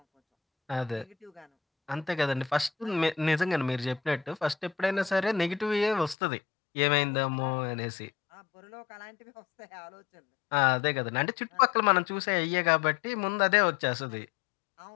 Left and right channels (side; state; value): right; drops out; at 6.2 s